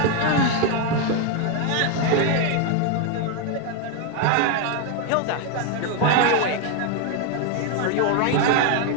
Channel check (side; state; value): both; different; correlation 0.01